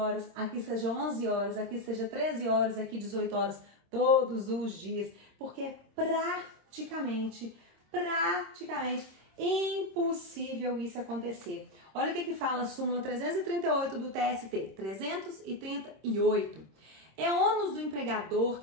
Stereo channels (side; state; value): left; late; 26 ms